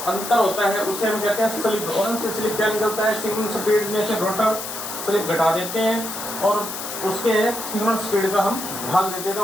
अंतर होता है उसे हम कहते हैं स्लिप। और हमसे स्लिप क्या निकलता है? सिंक्रोनस स्पीड में से रोटर स्लिप घटा देते हैं और उसके सिंक्रोनस स्पीड का हम भाग देते हैं, तो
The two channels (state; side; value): noise; left; hiss, 7 dB below the sound